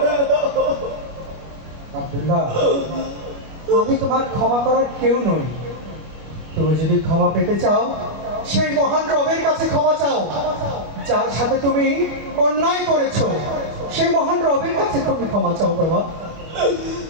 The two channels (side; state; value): left; late; 25 ms